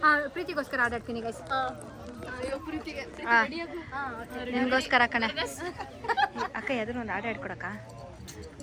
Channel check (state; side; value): identical; both; correlation 1.00